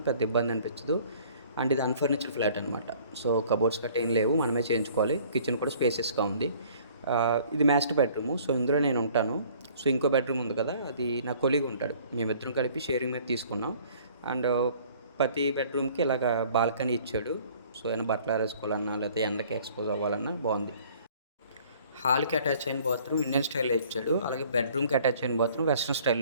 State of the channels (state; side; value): inverted; both; correlation -0.54